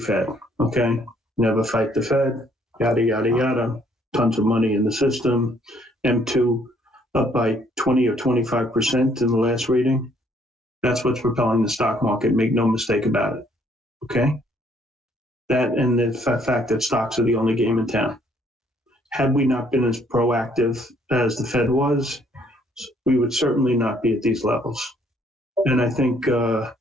okay? Never fight the Fed, yada, yada, yada. Tons of money in the system. M2 up by 20 or 25% in the last reading. That's what's propelling the stock market. Make no mistake about it, okay? That and the fact that stocks are the only game in town. Had we not been as proactive as the Fed was, we would certainly not be at these levels. And I think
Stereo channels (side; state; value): both; normal; correlation 0.65